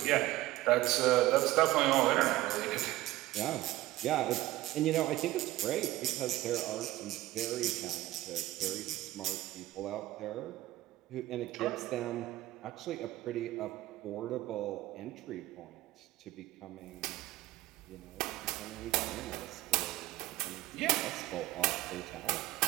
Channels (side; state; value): left; quieter; 16.7 dB